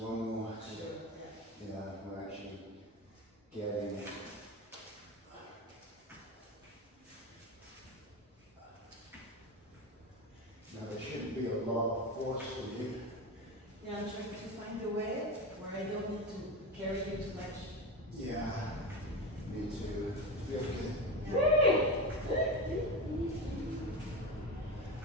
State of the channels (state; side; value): normal; both; correlation 0.22